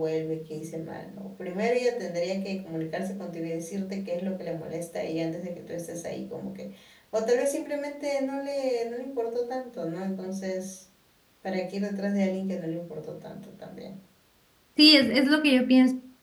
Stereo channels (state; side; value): identical; both; correlation 1.00